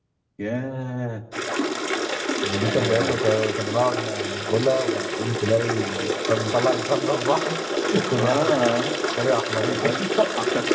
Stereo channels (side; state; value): both; identical; correlation 1.00